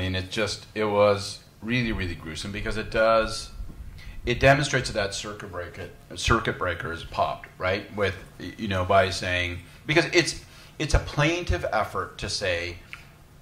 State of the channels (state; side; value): identical; both; correlation 1.00